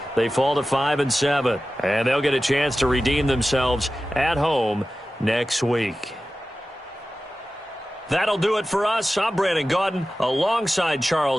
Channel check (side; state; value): both; normal; correlation 0.95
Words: they fall to 5-7. And they'll get a chance to redeem themselves at home next week. That'll do it for us. I'm Brandon Gaudin alongside